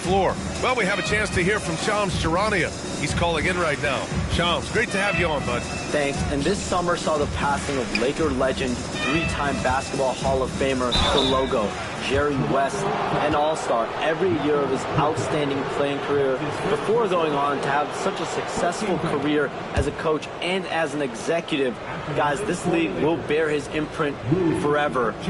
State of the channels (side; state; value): both; identical; correlation 1.00